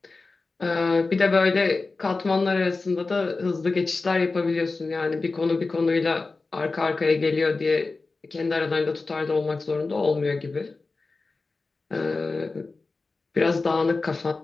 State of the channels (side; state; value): right; quieter; 3.8 dB